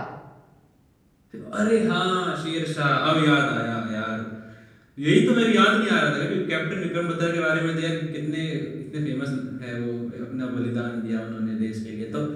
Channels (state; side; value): identical; both; correlation 1.00